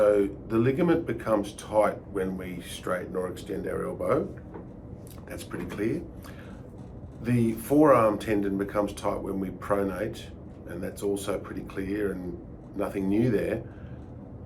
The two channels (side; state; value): both; identical; correlation 1.00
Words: the ligament becomes tight when we straighten or extend our elbow. That's pretty clear. The forearm tendon becomes tight when we pronate, and that's also pretty clear and nothing new there.